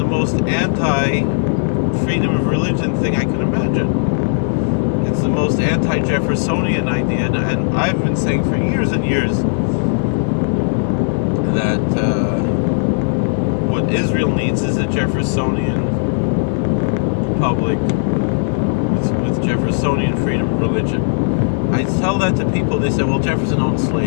most anti-freedom of religion thing I could imagine. It's the most anti-Jeffersonian idea, and I've been saying for years and years that what Israel needs is a Jeffersonian republic with Jeffersonian freedom of religion. I tell that to people, they say, well, Jefferson owned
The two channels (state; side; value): silent; right; digital silence